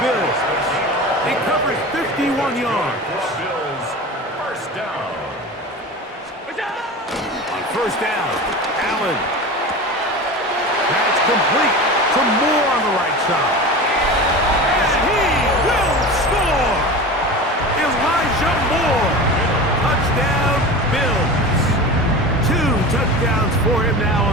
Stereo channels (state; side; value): normal; both; correlation 0.31